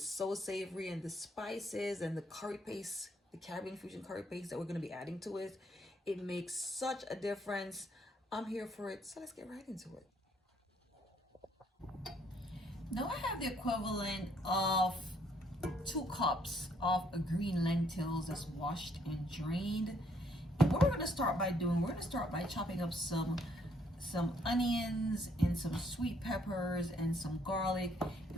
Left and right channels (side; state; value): both; normal; correlation 0.68